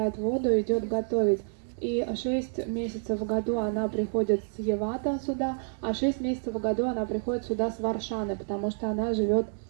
воду и идет готовить. И 6 месяцев в году она приходит с Явата сюда, а 6 месяцев в году она приходит сюда с Варшаны, потому что она живет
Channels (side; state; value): left; silent; digital silence